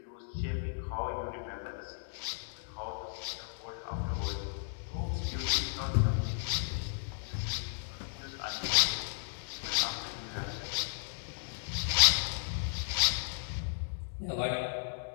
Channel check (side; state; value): right; silent; digital silence